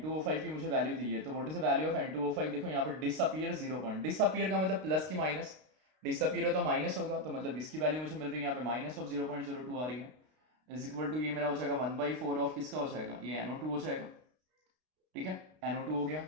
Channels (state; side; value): late; left; 32 ms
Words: की मुझे वैल्यू दी है, तो what is the value of N2O5, देखो यहाँ पे डिसअपियर 0 पॉइंट, डिसअपियर का मतलब प्लस की माइनस, डिसअपियर है तो माइनस होगा, तो मतलब इसकी वैल्यू मुझे मिल रही है यहाँ पे -0.02 आ रही है, इज इक्वल टू ये मेरा हो जाएगा 1/4 ऑफ किसका हो जाएगा, ये NO2 हो जाएगा, ठीक है, NO2 हो गया।